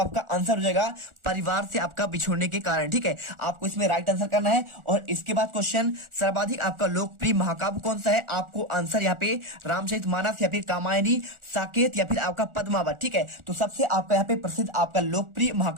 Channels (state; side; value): late; left; 1.4 ms